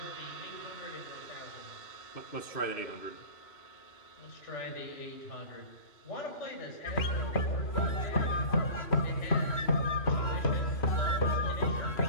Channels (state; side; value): late; right; 3.0 ms